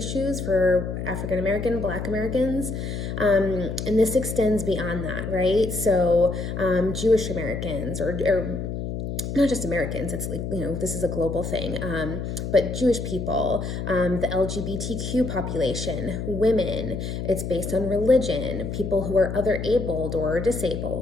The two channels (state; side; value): noise; left; hum, 4 dB below the sound